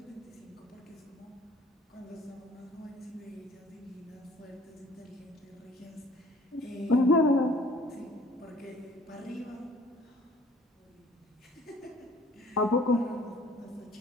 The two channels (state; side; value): normal; both; correlation 0.54